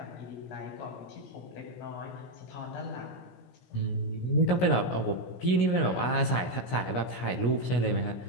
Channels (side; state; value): right; late; 17 ms